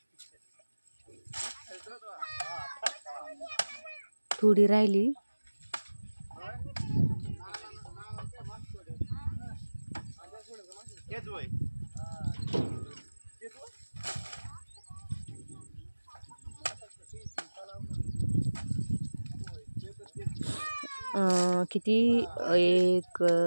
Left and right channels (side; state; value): both; inverted; correlation -1.00